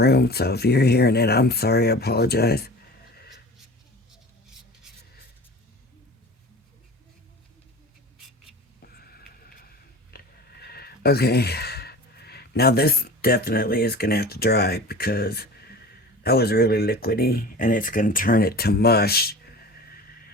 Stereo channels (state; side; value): normal; both; correlation 0.38